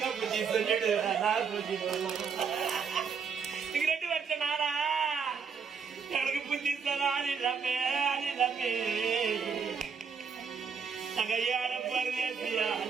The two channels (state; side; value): quieter; left; 6.1 dB